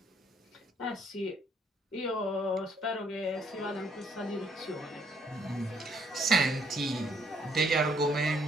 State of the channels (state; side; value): normal; both; correlation 0.67